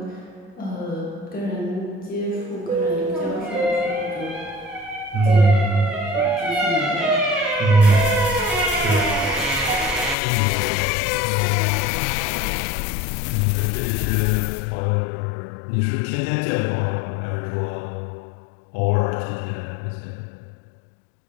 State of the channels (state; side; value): drops out; right; at 10.2 s